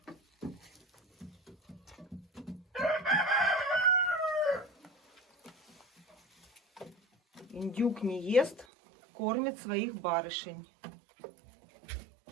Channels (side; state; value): left; drops out; at 8.7 s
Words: Индюк не ест, кормит своих барышень.